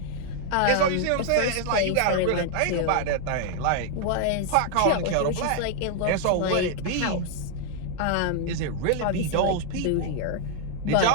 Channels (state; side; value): different; both; correlation 0.00